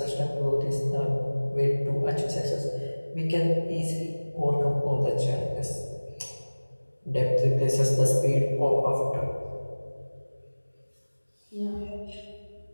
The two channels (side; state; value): both; inverted; correlation -1.00